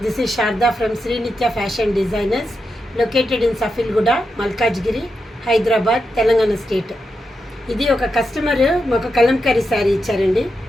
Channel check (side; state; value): both; normal; correlation 0.86